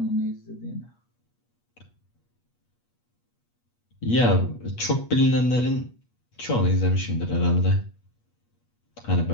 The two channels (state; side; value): late; right; 8.4 ms